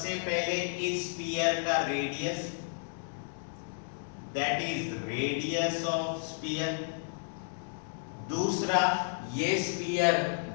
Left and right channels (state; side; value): silent; right; digital silence